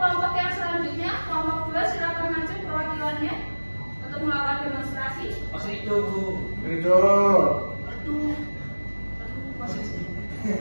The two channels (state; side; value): inverted; both; correlation -1.00